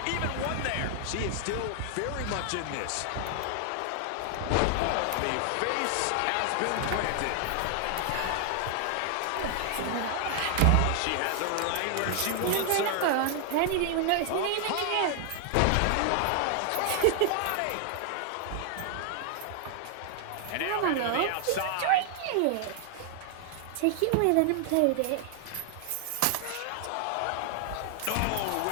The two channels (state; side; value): different; both; correlation 0.00